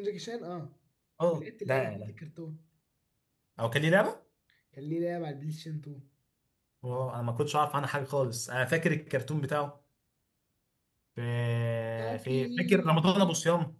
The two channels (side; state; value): both; identical; correlation 1.00